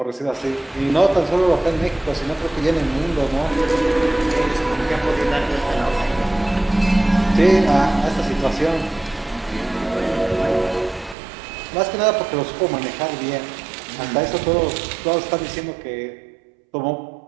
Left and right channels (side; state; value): left; drops out; at 11.2 s